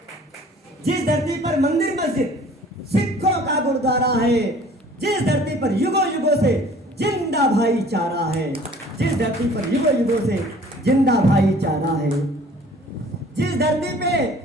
जिस धरती पर मंदिर मस्जिद सिखों का गुरुद्वारा है, जिस धरती पर युगों युगों से जिंदा भाईचारा है, जिस धरती पर युगों युगों से जिंदा भाईचारा है, जिस धरती पे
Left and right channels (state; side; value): normal; both; correlation 0.51